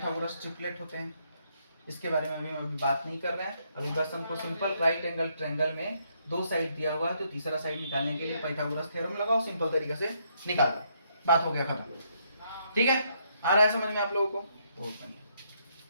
ट्रिपलेट होते हैं। इसके बारे में अभी बात नहीं कर रहे हैं। अभी बस हमको सिंपल राइट एंगल ट्रायंगल में 2 साइड दिया हुआ है तो तीसरा साइड निकालने के लिए पाइथागोरस थ्योरम लगाओ, सिंपल तरीके से निकाल दो, बात हो गया खत्म। ठीक है, आ रहा है समझ में आप लोगों को? बहुत बढ़िया।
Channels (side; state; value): both; inverted; correlation -0.74